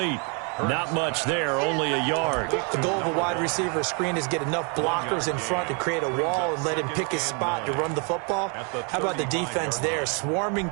Not much there, only a yard. The goal of a wide receiver screen is get enough blockers in front to create a wall and let him pick his spot to run the football. How about the defense there, swarming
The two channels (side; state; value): left; quieter; 35.8 dB